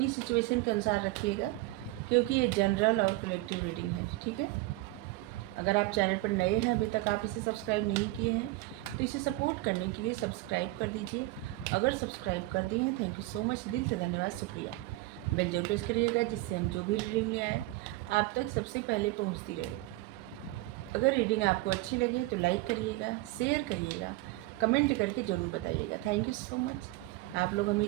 सिचुएशन के अनुसार रखिएगा, क्योंकि ये जनरल और कलेक्टिव रीडिंग है, ठीक है। अगर आप चैनल पर नए हैं, अभी तक आप इसे सब्सक्राइब नहीं किए हैं, तो इसे सपोर्ट करने के लिए सब्सक्राइब कर दीजिए। अगर सब्सक्राइब कर दिए हैं, थैंक यू सो मच, दिल से धन्यवाद, शुक्रिया। बेल जरूर प्रेस करिएगा, जिससे हम जो भी रीडिंग ले आए आप तक सबसे पहले पहुंचती रहे। अगर रीडिंग आपको अच्छी लगे तो लाइक करिएगा, शेयर करिएगा, कमेंट करके ज़रूर बताइएगा। थैंक यू सो मच, आप लोग हमें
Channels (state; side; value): quieter; left; 19.3 dB